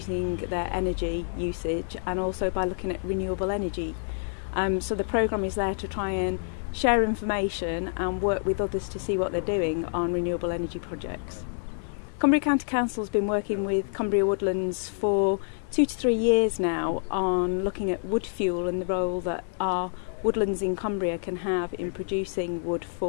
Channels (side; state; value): right; silent; 58 dB below the other